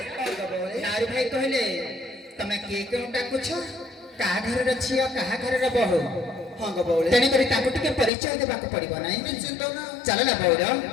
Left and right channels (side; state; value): right; drops out; at 8.1 s